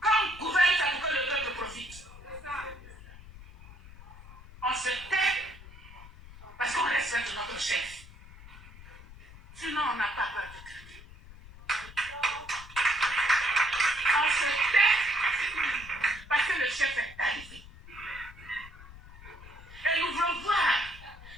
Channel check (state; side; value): noise; left; rumble, 18 dB below the sound